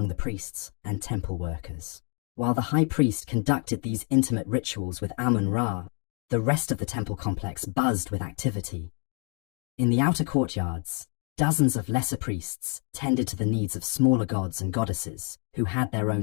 the priests and temple workers. While the high priest conducted these intimate rituals with Amun-Ra, the rest of the temple complex buzzed with activity. In the outer courtyards, dozens of lesser priests tended to the needs of smaller gods and goddesses who had their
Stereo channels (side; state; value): right; quieter; 39.2 dB